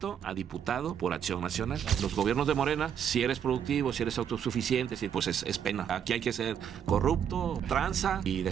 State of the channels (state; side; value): quieter; left; 8.6 dB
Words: a diputado por Acción Nacional. Los gobiernos de Morena, si eres productivo, si eres autosuficiente, pues es pena. Aquí hay que ser corrupto, tranza y